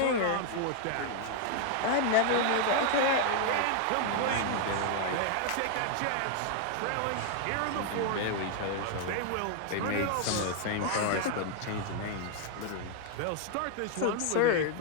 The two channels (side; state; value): both; different; correlation 0.00